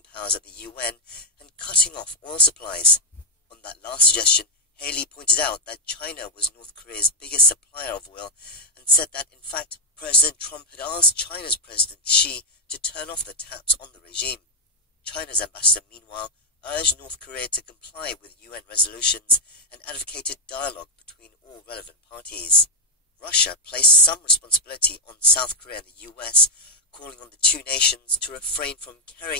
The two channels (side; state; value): both; normal; correlation -0.04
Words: powers at the UN and cutting off oil supplies. On that last suggestion, Haley pointed out that China was North Korea's biggest supplier of oil and said that, in fact, President Trump had asked China's President Xi to turn off the taps on the regime. China's ambassador, meanwhile, urged North Korea to comply with UN resolutions and advocated dialogue between all relevant parties. Russia placed some responsibility on South Korea and the US, calling on the two nations to refrain from